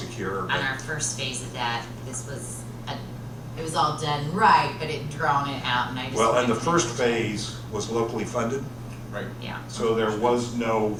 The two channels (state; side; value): identical; both; correlation 1.00